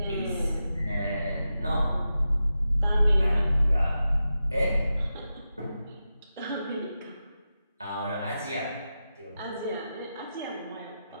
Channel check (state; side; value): inverted; both; correlation -0.91